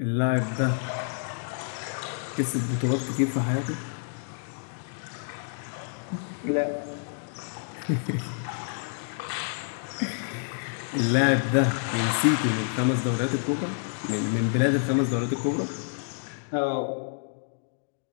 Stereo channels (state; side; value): silent; right; digital silence